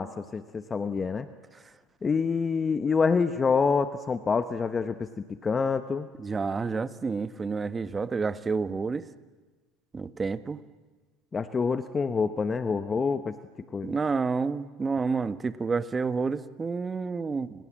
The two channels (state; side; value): normal; both; correlation 0.85